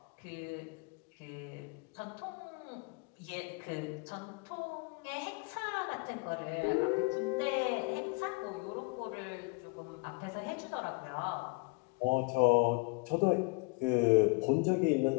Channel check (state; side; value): quieter; right; 29.5 dB